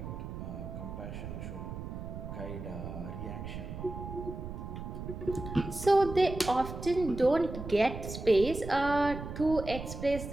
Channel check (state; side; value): noise; right; rumble, 8 dB below the sound